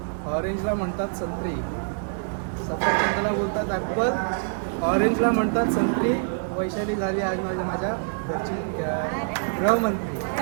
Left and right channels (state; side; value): silent; left; 61 dB below the other